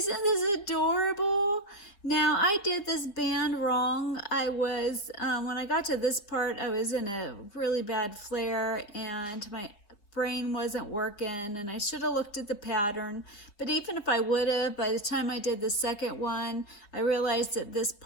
adorable? Now, I did this band wrong. I was, when I got to this part, I was in a really bad flare and my brain wasn't working, and I should have looked at the pattern. But even if I would have, by the time I did the second one, I realized that this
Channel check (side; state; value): right; late; 4.9 ms